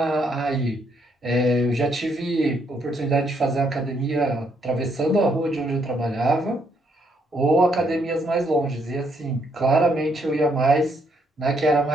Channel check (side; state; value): both; normal; correlation 0.73